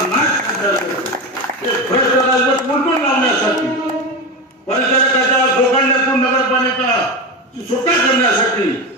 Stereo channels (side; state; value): both; normal; correlation 0.19